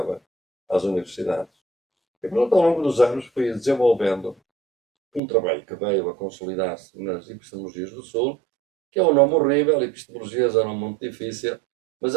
às universidades. E pronto, ao longo dos anos fui desenvolvendo um trabalho que veio a consolidar-se nas epistemologias do Sul, que é um nome horrível, epistemologias é um nome muito difícil, mas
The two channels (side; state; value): left; drops out; at 5.2 s